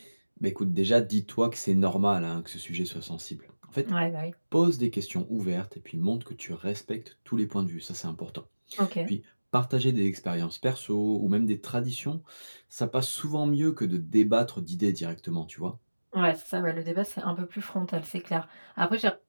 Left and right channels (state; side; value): inverted; both; correlation -1.00